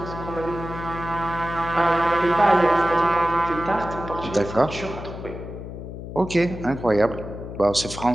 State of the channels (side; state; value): left; noise; hum, 10 dB below the sound